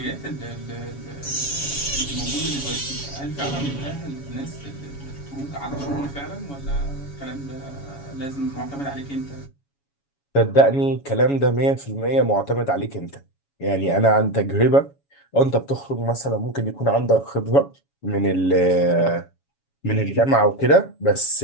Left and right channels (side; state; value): right; late; 7.2 ms